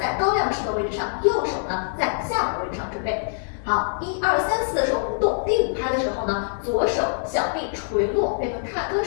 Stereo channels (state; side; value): silent; right; digital silence